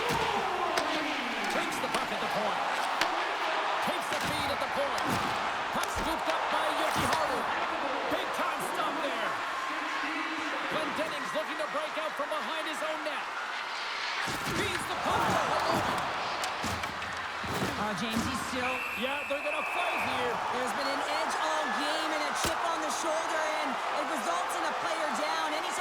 Takes the puck at the point. Takes the feed at the point. Puck scooped up by Yoshihara. Big time stop there. Glenn Dennings looking to break out from behind his own net. Feeds the puck to Holden. James, he's still... Yeah, they're going to fight here. There's been an edge all game and a chip on the shoulder, and it results in a player down.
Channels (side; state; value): both; identical; correlation 1.00